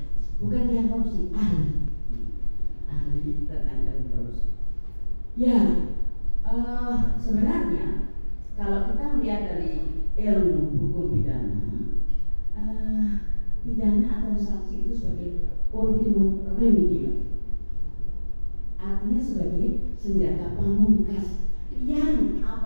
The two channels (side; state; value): both; inverted; correlation -1.00